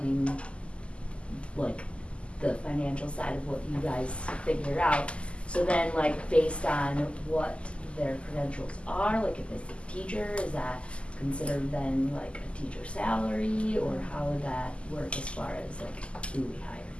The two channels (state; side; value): late; right; 0.055 ms